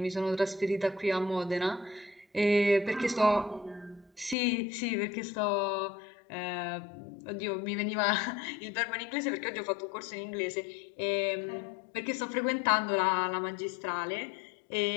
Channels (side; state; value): right; drops out; at 4.4 s